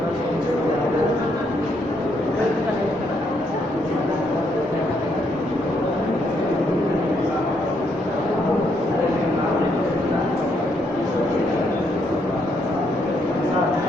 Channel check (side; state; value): both; normal; correlation 0.74